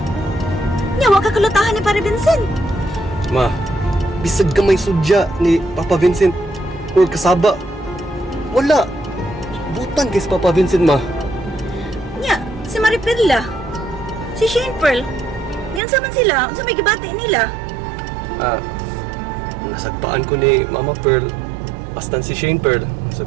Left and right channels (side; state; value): left; drops out; at 15.8 s